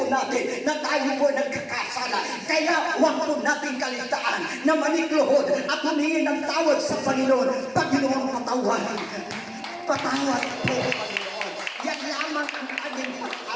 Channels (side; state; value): both; identical; correlation 1.00